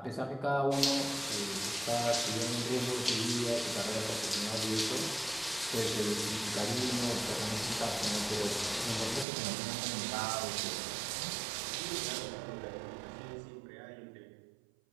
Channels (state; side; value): drops out; left; at 9.2 s